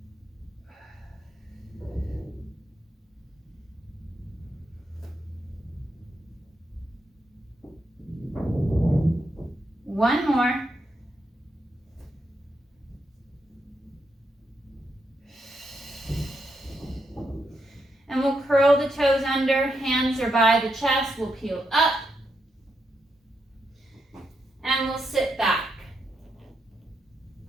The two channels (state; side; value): normal; both; correlation 0.82